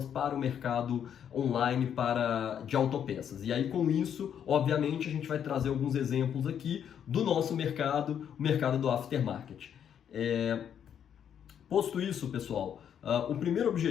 para o mercado online de autopeças. E aí com isso, obviamente, a gente vai trazer alguns exemplos aqui do nosso mercado, o mercado do aftermarket. Posto isso, pessoal, o primeiro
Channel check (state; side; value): quieter; right; 8.8 dB